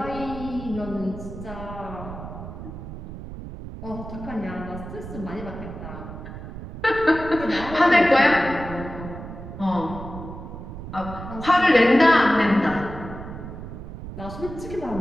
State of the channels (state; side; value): noise; right; rumble, 10 dB below the sound